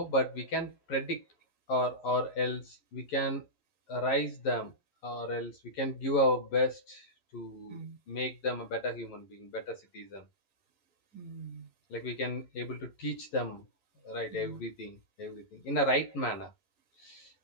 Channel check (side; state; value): right; late; 11 ms